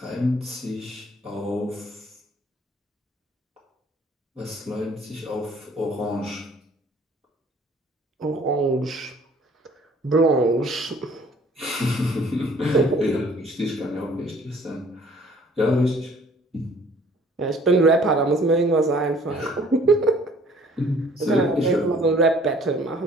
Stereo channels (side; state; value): both; normal; correlation 0.56